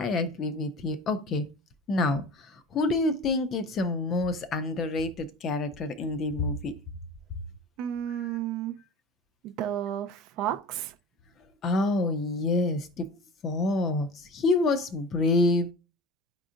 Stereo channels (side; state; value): both; normal; correlation 0.35